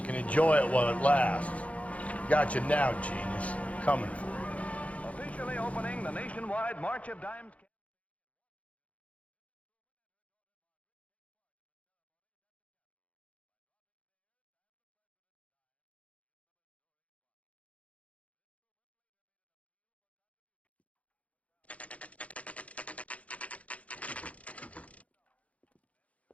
can enjoy it while it lasts. Got you now, genius. I'm coming for you. Officially opening the nationwide March of Dimes campaign.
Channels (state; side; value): late; right; 0.066 ms